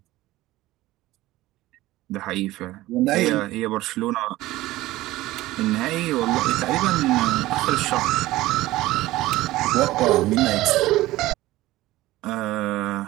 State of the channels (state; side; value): quieter; left; 17.2 dB